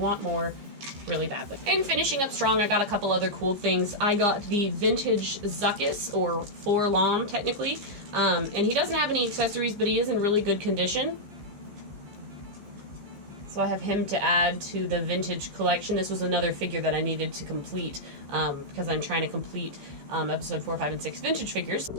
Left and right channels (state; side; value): late; left; 15 ms